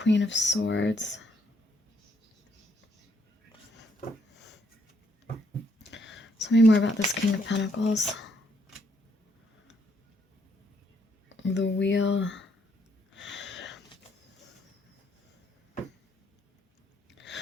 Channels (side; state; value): both; normal; correlation 0.72